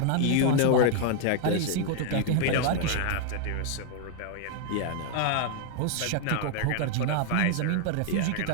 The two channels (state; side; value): different; both; correlation 0.00